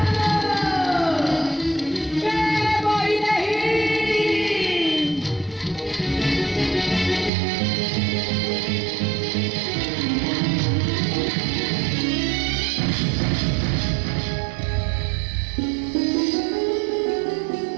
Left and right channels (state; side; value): drops out; left; at 7.3 s